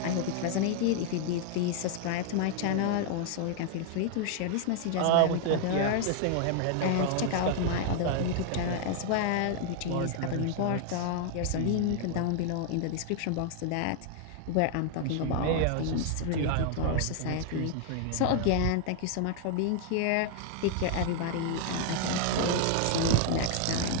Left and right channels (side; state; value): both; different; correlation 0.00